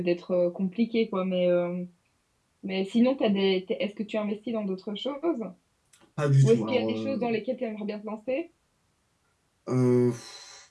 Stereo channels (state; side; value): identical; both; correlation 1.00